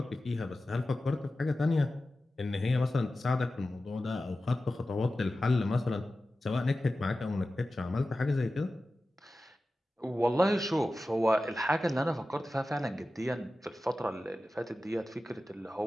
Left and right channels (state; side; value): normal; both; correlation 0.94